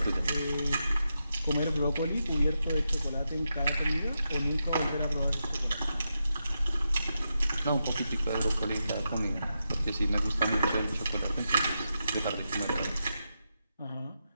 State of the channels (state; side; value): inverted; both; correlation -0.86